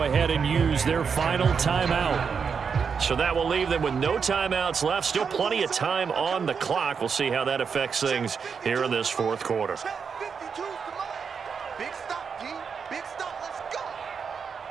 ahead and use their final timeout. So that will leave them with no timeouts left. Still plenty of time on the clock. We'll see how that affects things here in this fourth quarter.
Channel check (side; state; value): left; quieter; 6.1 dB